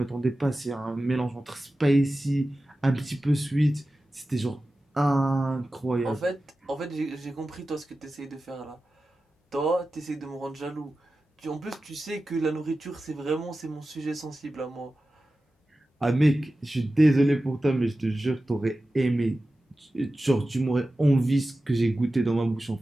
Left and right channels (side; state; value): both; normal; correlation 0.94